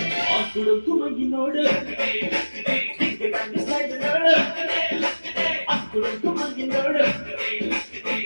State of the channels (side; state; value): both; inverted; correlation -1.00